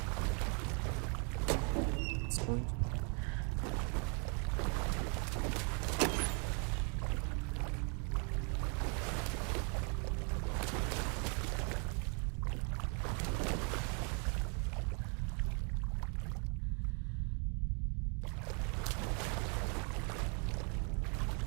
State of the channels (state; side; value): quieter; left; 37.4 dB